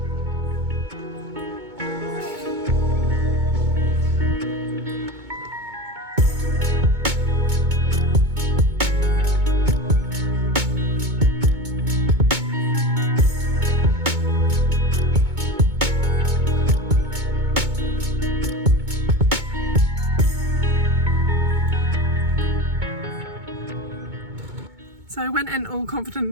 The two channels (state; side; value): late; left; 2.2 ms